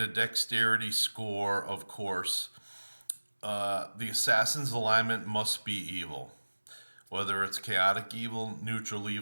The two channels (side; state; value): both; inverted; correlation -1.00